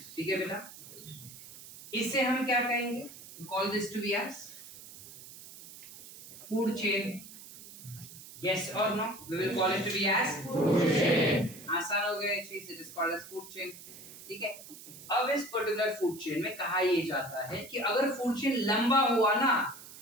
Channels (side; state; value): right; noise; hiss, 16 dB below the sound